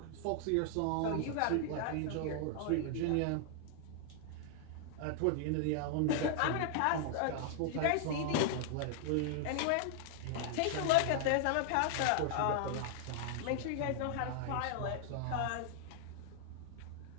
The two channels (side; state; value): both; different; correlation 0.00